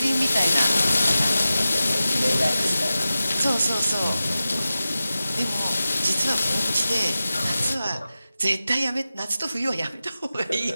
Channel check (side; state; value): both; inverted; correlation -0.94